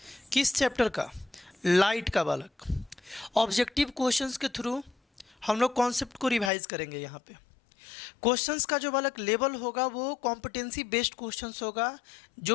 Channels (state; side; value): drops out; right; at 6.5 s